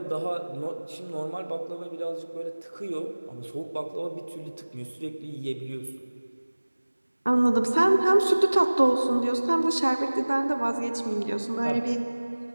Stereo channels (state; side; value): inverted; both; correlation -1.00